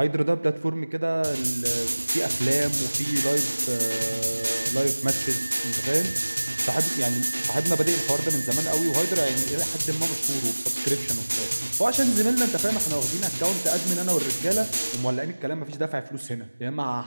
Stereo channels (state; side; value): inverted; both; correlation -1.00